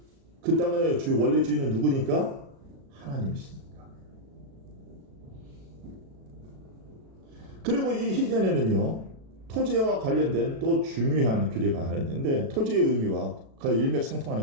그 땅의 원래 주인은 누구니까? 하나님이시니까. 그리고 이 희년에는요, 토지와 관련된 또 중요한 규례가 하나 있는데, 토지의 의미와 그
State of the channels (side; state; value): left; late; 36 ms